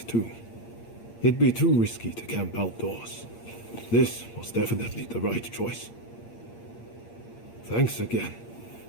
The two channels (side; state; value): right; late; 8.6 ms